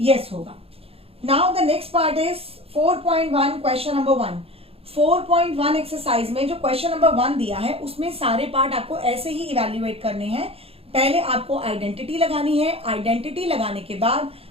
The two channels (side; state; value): left; late; 0.28 ms